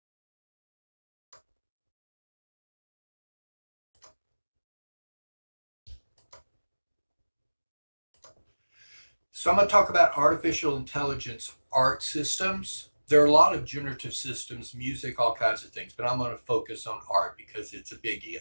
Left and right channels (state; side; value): inverted; both; correlation -1.00